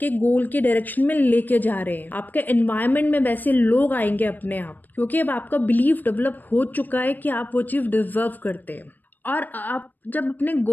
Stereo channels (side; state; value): right; late; 0.088 ms